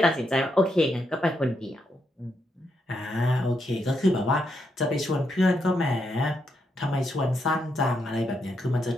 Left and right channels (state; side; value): normal; both; correlation 0.80